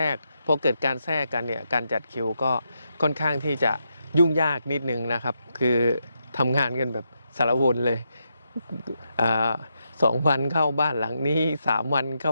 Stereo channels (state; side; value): inverted; both; correlation -0.83